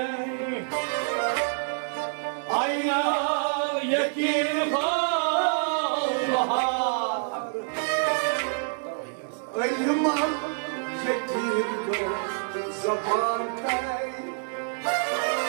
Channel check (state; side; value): silent; left; 60 dB below the other